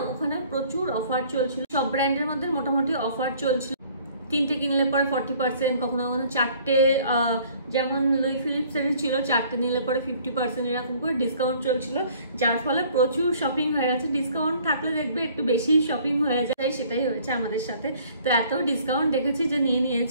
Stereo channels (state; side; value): inverted; both; correlation -0.56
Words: ওখানে প্রচুর অফার চলছিল, সব ব্র্যান্ডের মধ্যে মোটামুটি অফার চলছিল। 3টে কিনলে পরে 40%, কখনো কখনো 4টে, যেমন লুই ফিলিপস এর ছিল 4টে নিলে পরে 50% এরকম করে ডিসকাউন্ট চলছিল, যার ফলে প্রচুর শপিং হয়ে গেছে। ডিসকাউন্ট থাকলে দেখবে একটু বেশি শপিং হয়ে যায়, সেটাই হয়েছে আমাদের সাথে। তো এত ডিসকাউন্ট দেখেছি যে